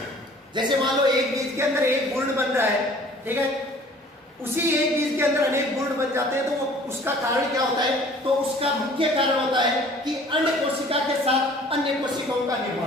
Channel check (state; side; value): normal; both; correlation 0.51